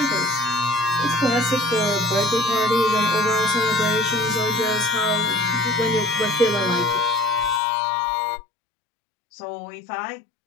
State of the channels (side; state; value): right; drops out; at 7.6 s